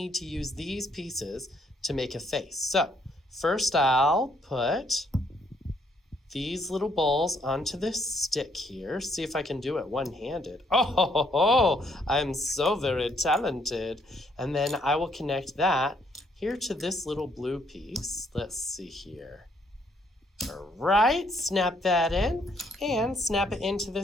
to use these pieces to make a face. So first I'll put these little balls onto this stick here. See if I can do it one-handed. Oh, I'm so very talented. And then I will connect that here to this little blue piece. Let's see here. All right, snap that in and snap it into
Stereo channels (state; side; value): normal; both; correlation 0.69